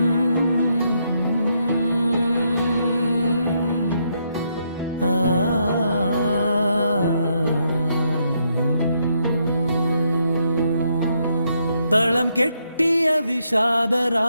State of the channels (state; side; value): inverted; both; correlation -0.77